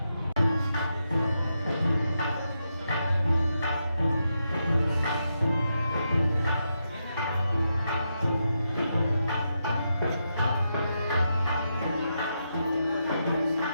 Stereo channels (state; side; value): inverted; both; correlation -0.84